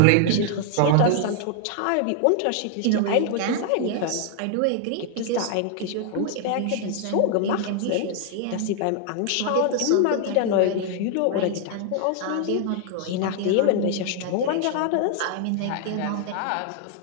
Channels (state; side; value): different; both; correlation 0.00